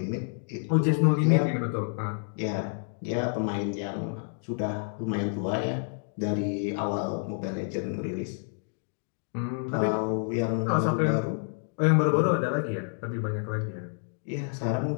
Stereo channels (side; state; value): right; silent; 59 dB below the other